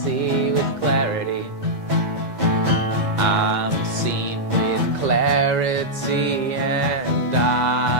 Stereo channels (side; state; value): both; normal; correlation -0.06